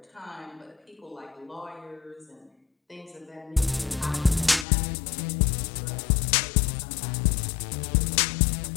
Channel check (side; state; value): right; drops out; at 4.7 s